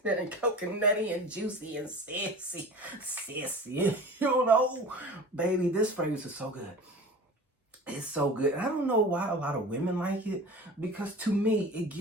coconutty and juicy and sissy, baby. This fragrance is so good. It's so good. And I don't know why a lot of women like it, because to me, it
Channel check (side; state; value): both; normal; correlation 0.37